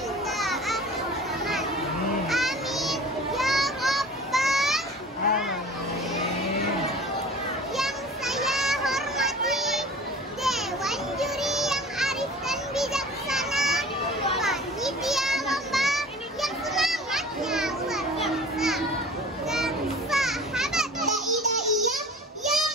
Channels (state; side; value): normal; both; correlation 0.42